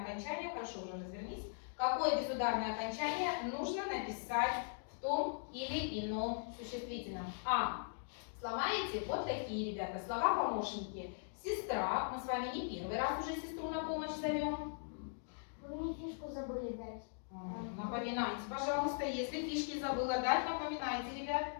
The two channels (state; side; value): silent; right; digital silence